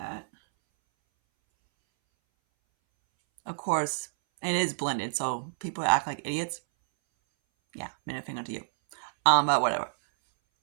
Of course, it is blended, so people act like idiots. Yeah, middle finger to you. But whatever.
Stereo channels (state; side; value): silent; left; 59 dB below the other